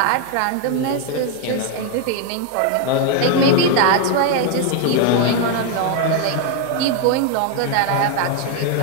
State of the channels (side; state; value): both; different; correlation 0.01